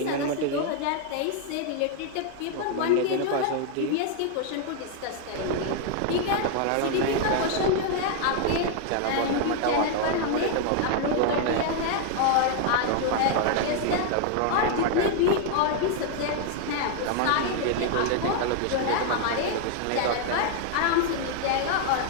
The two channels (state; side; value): different; both; correlation 0.00